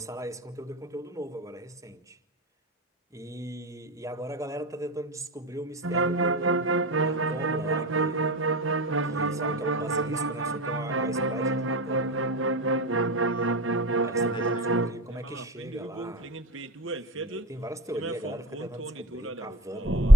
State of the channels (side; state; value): both; normal; correlation 0.30